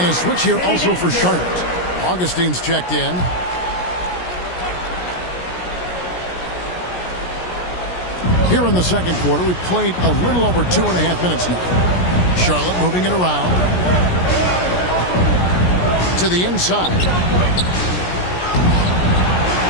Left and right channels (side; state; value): right; late; 17 ms